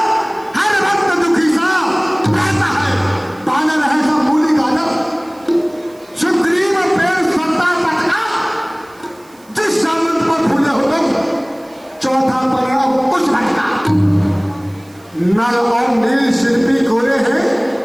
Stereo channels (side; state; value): right; noise; hiss, 29 dB below the sound